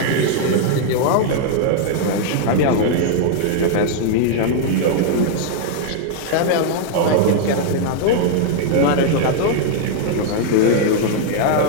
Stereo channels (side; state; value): both; different; correlation -0.01